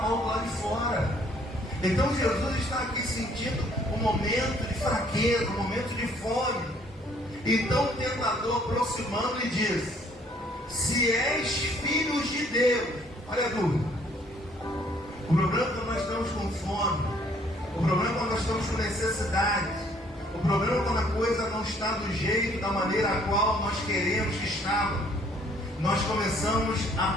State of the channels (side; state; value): both; normal; correlation 0.62